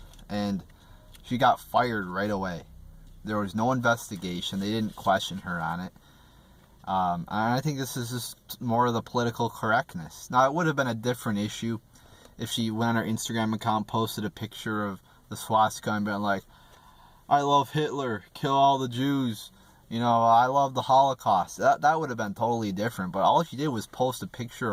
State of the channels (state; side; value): identical; both; correlation 1.00